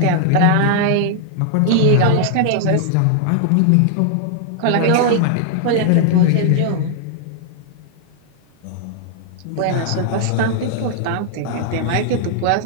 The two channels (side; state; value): both; different; correlation 0.00